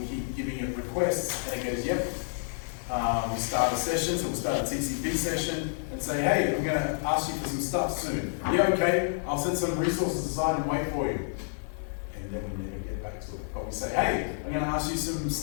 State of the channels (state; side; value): silent; right; digital silence